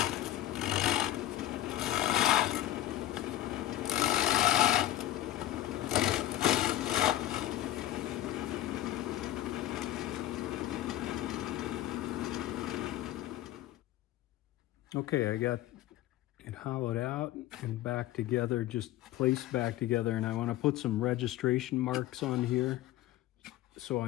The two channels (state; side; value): quieter; right; 14.3 dB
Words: Okay, I got it hollowed out and back together, just placed back together, and I want to put some registration marks on here so